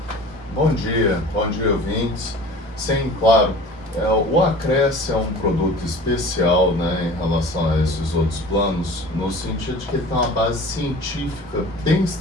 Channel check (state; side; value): normal; both; correlation 0.42